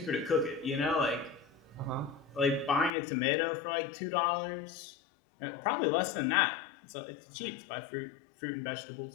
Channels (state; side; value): drops out; right; at 2.9 s